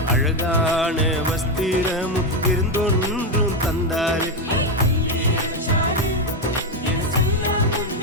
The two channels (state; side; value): normal; both; correlation 0.09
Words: அழகான வஸ்திரமும் இருந்தொன்றும் தந்தாரு.